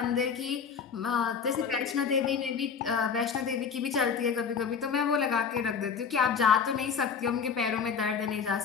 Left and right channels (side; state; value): right; quieter; 6.4 dB